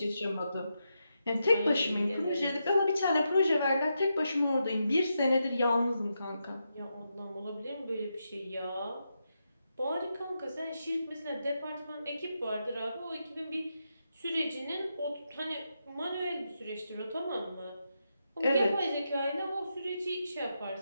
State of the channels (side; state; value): both; inverted; correlation -0.85